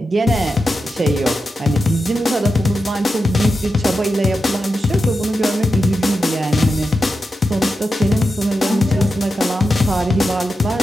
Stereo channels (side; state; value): both; normal; correlation 0.89